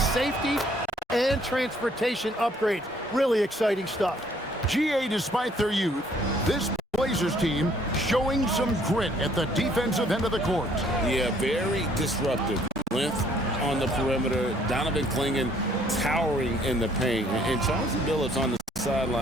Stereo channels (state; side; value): normal; both; correlation 0.63